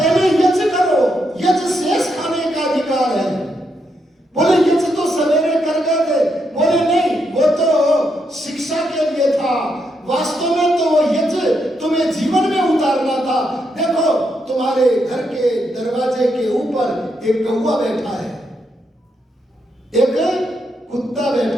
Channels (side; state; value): both; normal; correlation 0.80